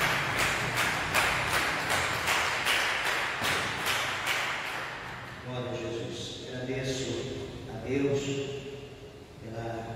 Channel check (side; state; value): both; identical; correlation 1.00